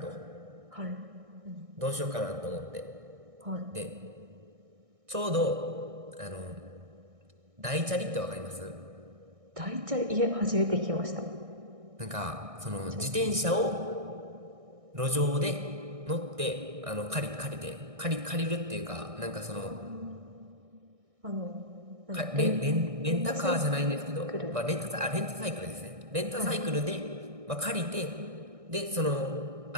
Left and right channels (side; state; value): left; late; 1.6 ms